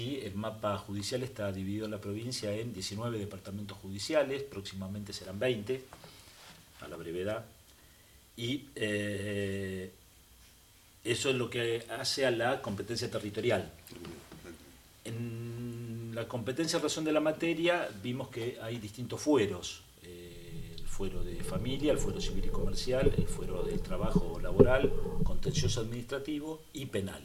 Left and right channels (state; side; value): identical; both; correlation 1.00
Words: el mapa judicial está dividido en la provincia en 19 departamentos judiciales, próximamente serán 20, a la brevedad, y eso es lo que hace a la competencia territorial. En la competencia en razón de la materia vimos que hay distintos fueros, el fuero de familia, el fuero civil y comercial, el fuero del trabajo laboral, contencioso administrativo y penal.